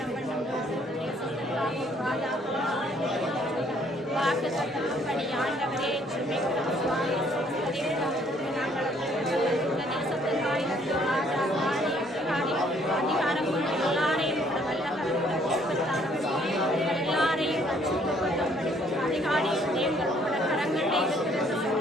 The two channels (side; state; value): both; normal; correlation 0.64